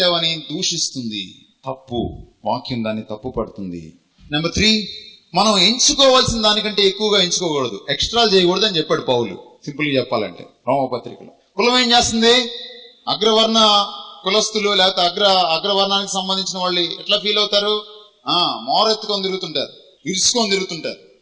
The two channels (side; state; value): both; identical; correlation 1.00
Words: దూషిస్తుంది. తప్పు. వాక్యం దాన్ని తప్పు పడుతుంది. నెంబర్ 3, మనం ఎంచుకోవాల్సిన దానికంటే ఎక్కువగా ఎంచుకోకూడదు, ఎక్స్ట్రా చేయకూడదు అని చెప్పాడు పౌలు. సింపుల్ గా చెప్పాలంటే రోమపత్రికలో. కులం ఏం చేస్తుంది? అగ్రవర్ణ కులస్తులు లేకపోతే అగ్రవర్ణానికి సంబంధించిన వాళ్ళు ఎట్లా ఫీల్ అవుతారు? మోరెత్తుకొని తిరుగుతుంటారు, ఇరుచుకొని తిరుగుతుంటారు.